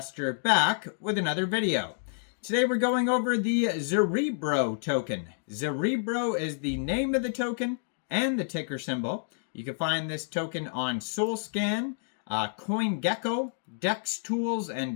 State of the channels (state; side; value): silent; right; digital silence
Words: back with another video. Today we're going over the Zerebro token. Zerebro is the name of the token and the ticker symbol. You can find this token on SolScan, CoinGecko, Dex Tools,